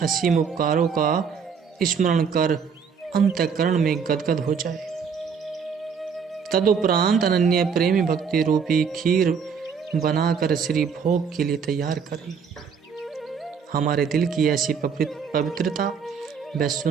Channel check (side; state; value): left; quieter; 6.4 dB